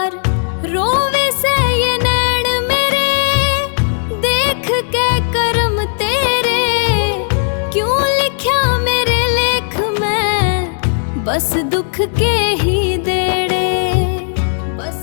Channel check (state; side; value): silent; right; digital silence